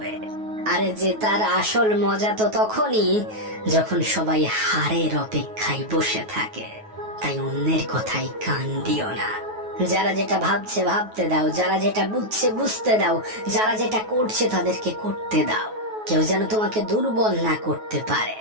আরে যে তার আসল মজা তো তখনই যখন সবাই হারের অপেক্ষায় বসে থাকে। তাই অন্যের কথাই কান দিও না। যারা যেটা ভাবছে ভাবতে দাও, যারা যেটা বুঝছে বুঝতে দাও, যারা যেটা করছে তাদেরকে করতে দাও। কেউ যেন তোমাকে দুর্বল না করতে পারে।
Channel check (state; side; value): late; left; 9.3 ms